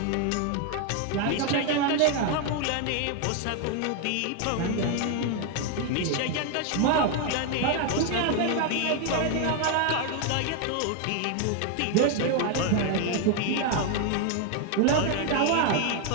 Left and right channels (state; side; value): different; both; correlation 0.01